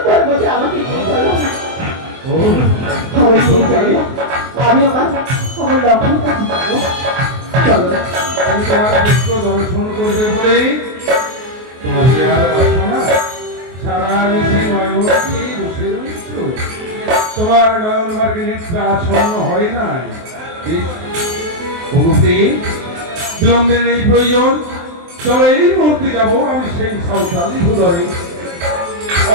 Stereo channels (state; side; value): late; left; 23 ms